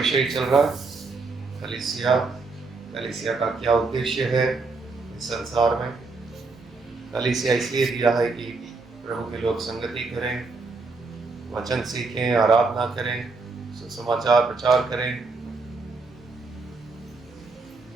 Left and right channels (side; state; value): left; quieter; 3.9 dB